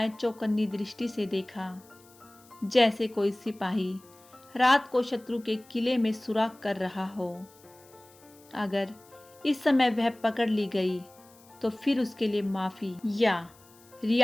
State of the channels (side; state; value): left; noise; hiss, 26 dB below the sound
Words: चौकन्नी दृष्टि से देखा, जैसे कोई सिपाही रात को शत्रु के किले में सुराग कर रहा हो। अगर इस समय वह पकड़ ली गई तो फिर उसके लिए माफी या